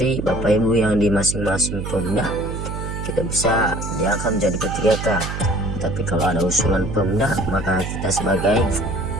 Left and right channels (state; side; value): noise; right; hum, 5 dB below the sound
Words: Bapak Ibu yang di masing-masing Pemda tidak bisa diangkat menjadi P3K. Tapi kalau ada usulan Pemda, maka kita sebagai